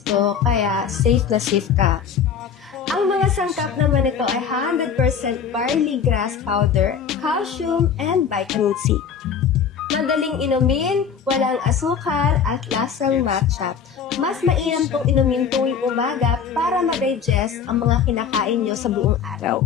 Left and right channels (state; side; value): quieter; right; 7.1 dB